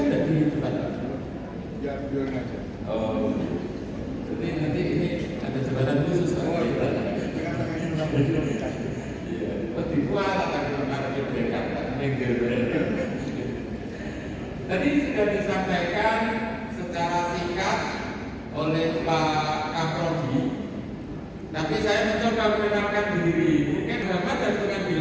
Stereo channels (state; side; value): identical; both; correlation 1.00